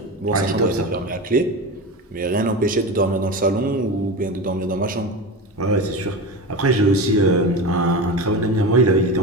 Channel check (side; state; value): both; normal; correlation 0.25